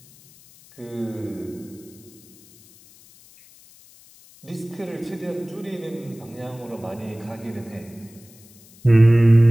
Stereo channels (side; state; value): left; noise; hiss, 25 dB below the sound